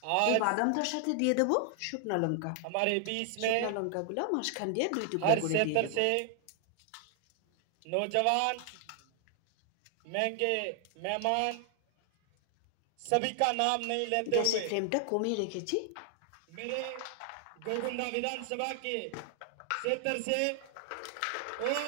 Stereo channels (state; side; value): different; both; correlation 0.00